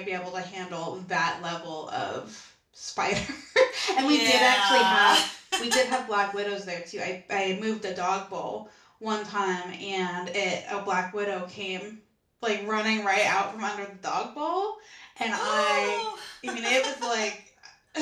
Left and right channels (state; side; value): identical; both; correlation 1.00